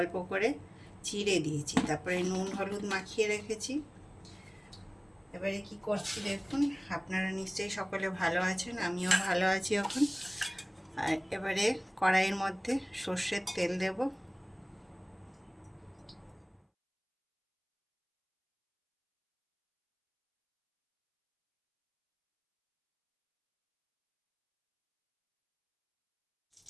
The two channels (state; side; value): identical; both; correlation 1.00